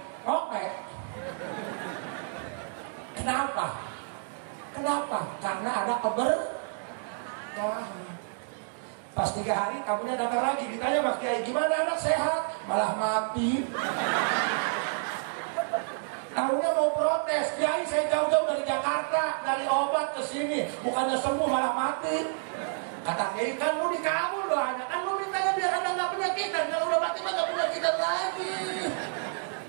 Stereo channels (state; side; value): silent; left; digital silence